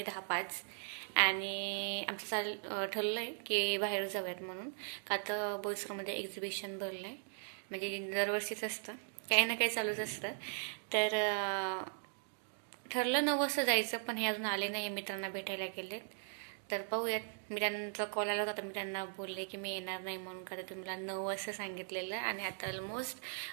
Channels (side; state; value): left; silent; digital silence